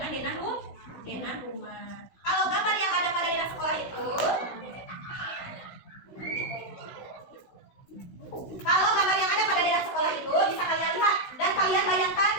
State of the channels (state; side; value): late; right; 16 ms